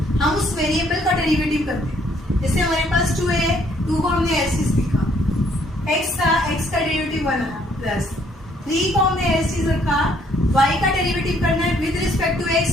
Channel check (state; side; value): normal; both; correlation 0.66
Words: हम उस वेरिएबल का डेरिवेटिव करते हैं। जैसे हमारे पास 2 है, 2 को हमने ऐसे लिखा, x था, x का डेरिवेटिव 1 आया, प्लस 3 को हमने ऐसे रखा, y का डेरिवेटिव करना है with respect to x,